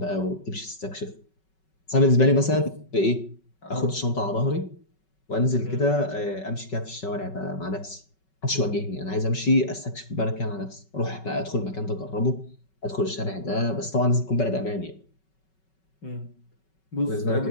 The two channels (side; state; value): right; late; 5.3 ms